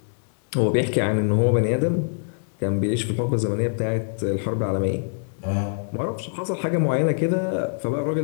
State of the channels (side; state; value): right; silent; 63 dB below the other